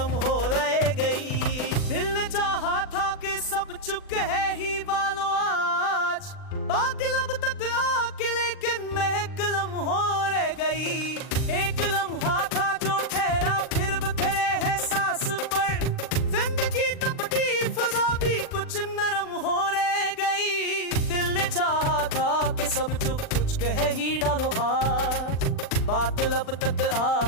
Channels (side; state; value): right; late; 39 ms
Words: हो रह गई। दिल ने चाहा था कि सब चुप है ही बालो आज, बात लब तक आके लेकिन महकलम हो रह गई। एक लम्हा था जो ठहरा फिर बिखरे है सांस पर, जिंदगी तपती फजा भी कुछ नरम हो रह गई। दिल ने चाहा था कि सब चुप कुछ कह ही डालो आज, बात लब तक